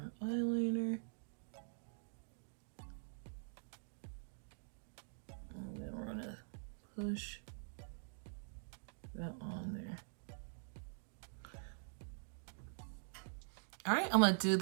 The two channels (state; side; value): silent; left; digital silence